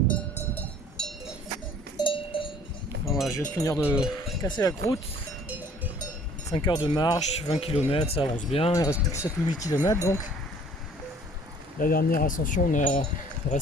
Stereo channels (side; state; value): both; normal; correlation 0.54